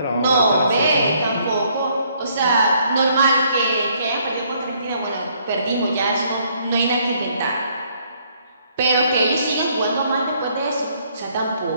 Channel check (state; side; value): inverted; both; correlation -0.66